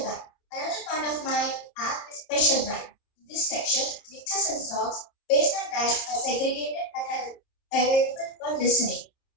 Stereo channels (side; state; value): right; late; 29 ms